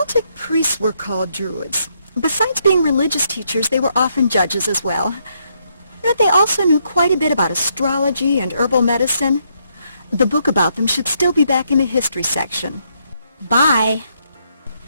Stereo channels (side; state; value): both; inverted; correlation -0.76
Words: priests were called druids. Besides being religious teachers, they were often judges as well. But they also knew quite a bit about astrology and herbal medicine. The book about them should still be back in the history section. Bye.